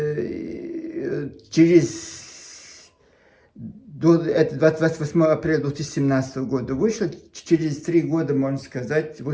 28 апреля 2017 года вышла, через 3 года, можно сказать,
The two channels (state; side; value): identical; both; correlation 1.00